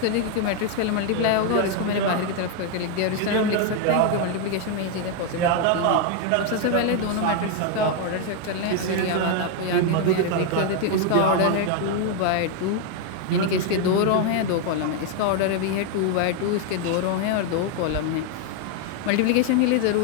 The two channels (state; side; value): different; both; correlation 0.01